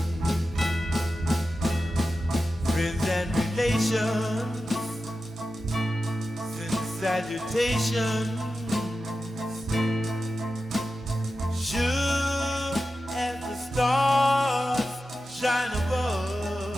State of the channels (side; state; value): both; normal; correlation 0.92